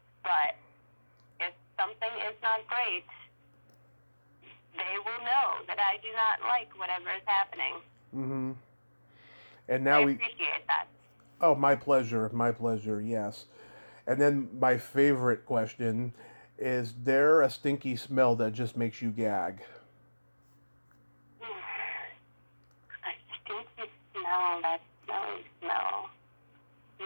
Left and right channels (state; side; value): inverted; both; correlation -1.00